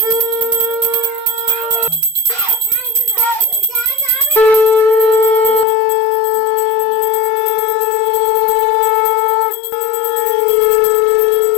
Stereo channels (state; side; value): drops out; right; at 5.7 s